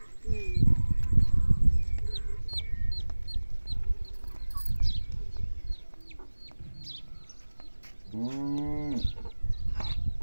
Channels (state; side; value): inverted; both; correlation -1.00